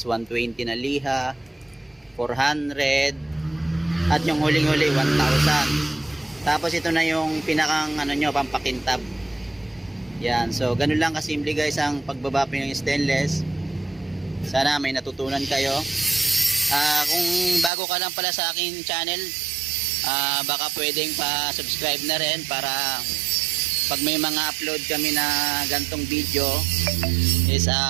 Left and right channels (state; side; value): drops out; left; at 17.7 s